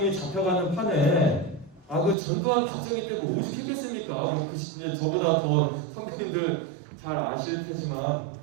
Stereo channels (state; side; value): drops out; left; at 2.1 s